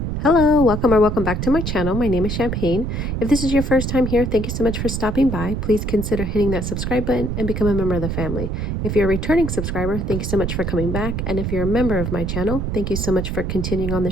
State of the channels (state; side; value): noise; right; rumble, 2 dB below the sound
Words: Hello, welcome or welcome back to my channel. My name is Champagne. If this is your first time here, thank you so much for stopping by. Please consider hitting that subscribe button and become a member of the family. If you're a returning subscriber, thank you so much for coming back. And if you're a member of my channel, thank you so much for continuing on